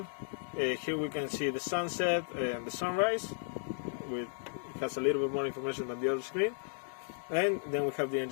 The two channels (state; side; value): silent; right; digital silence